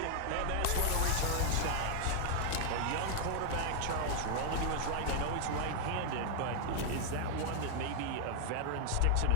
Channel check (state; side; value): different; both; correlation 0.00